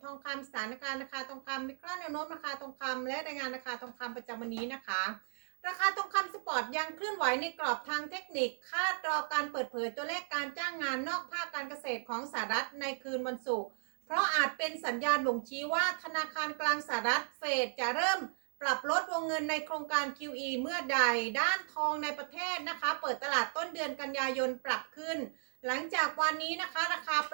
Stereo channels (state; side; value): silent; left; digital silence